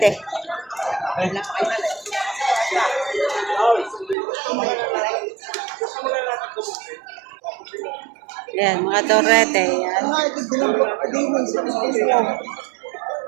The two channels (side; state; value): left; drops out; at 4.2 s